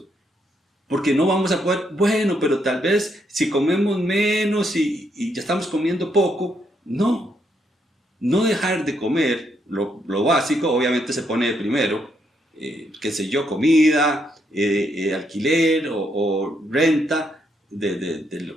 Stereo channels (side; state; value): both; normal; correlation 0.76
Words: Porque no vamos a poder, bueno, pero tal vez si comemos menos y ya estamos comiendo poco. No dejar de comer lo básico, obviamente se pone de primero, qué sé yo, comida, alquiler o renta del